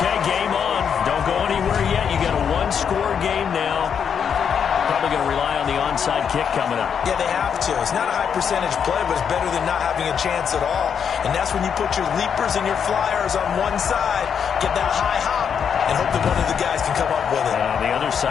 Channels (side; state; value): right; quieter; 7.4 dB